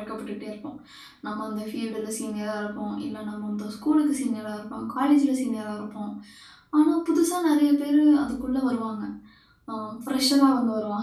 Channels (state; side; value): identical; both; correlation 1.00